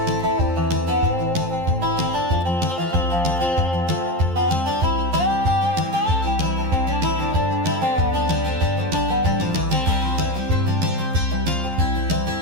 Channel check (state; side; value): late; left; 11 ms